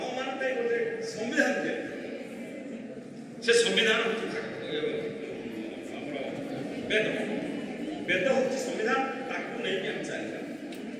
मान गोटे संविधान दे से संविधान वेद वेद हूँ संविधान ताकू नहीं आम चलता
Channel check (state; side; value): identical; both; correlation 1.00